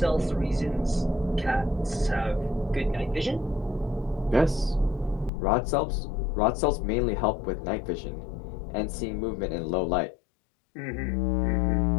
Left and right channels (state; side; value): drops out; right; at 5.3 s